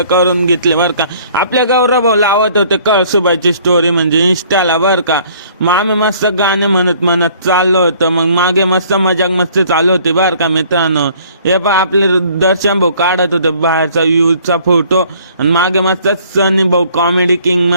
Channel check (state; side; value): inverted; both; correlation -0.57